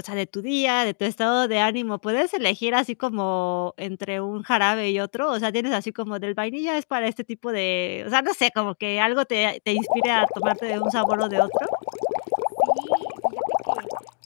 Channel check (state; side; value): silent; right; digital silence